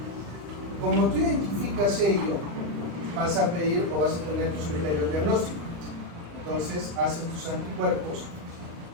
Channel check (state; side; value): late; left; 35 ms